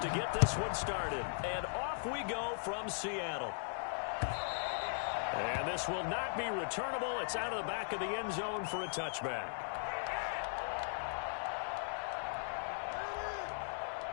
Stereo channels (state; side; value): silent; right; digital silence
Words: get this one started. And off we go from Seattle. And this will not be returnable. It's out of the back of the end zone for a touchback.